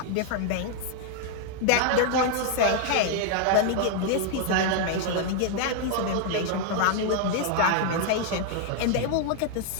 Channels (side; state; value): both; different; correlation 0.00